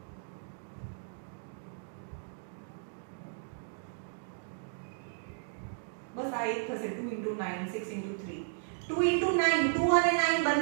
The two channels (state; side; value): silent; left; digital silence